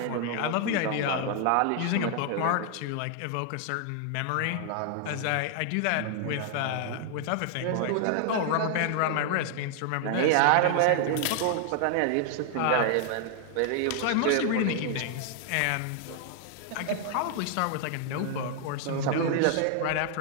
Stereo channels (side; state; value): both; different; correlation 0.00